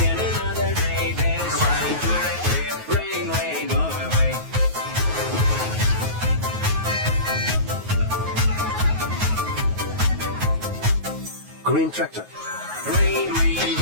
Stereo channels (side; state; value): left; late; 9.4 ms